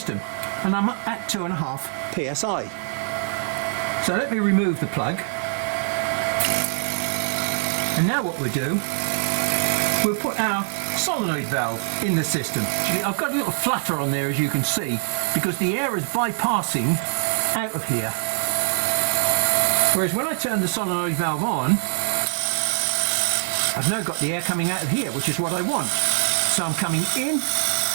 and I'm at 2.5 psi. So let me remove the plug, and now what we'll do, we'll put our solenoid valve in the system. I've got a little flutter on there, as you can see, because the air is bypassing out of here. Whereas when I turn the solenoid valve on, I've now got the air coming out of here, which is what I want. So I'm coming in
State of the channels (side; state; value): left; silent; 62 dB below the other